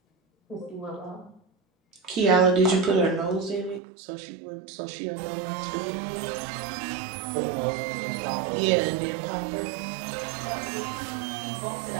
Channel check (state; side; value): drops out; left; at 3.8 s